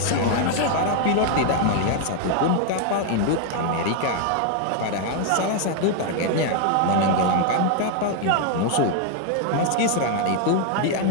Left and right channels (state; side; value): different; both; correlation 0.00